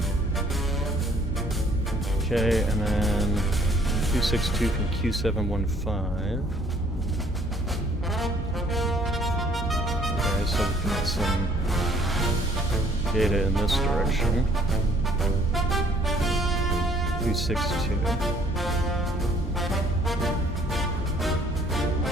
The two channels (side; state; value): both; normal; correlation 0.60